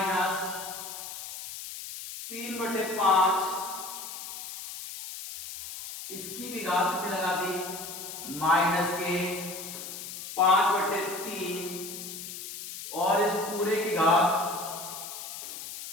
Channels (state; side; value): noise; left; hiss, 9 dB below the sound